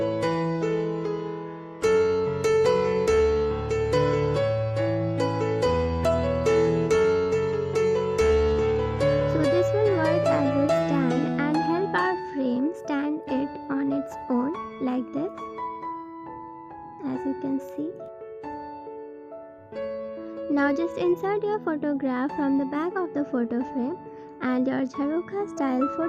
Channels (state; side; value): identical; both; correlation 1.00